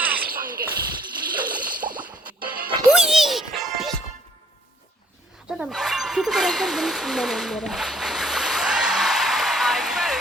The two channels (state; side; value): normal; both; correlation 0.60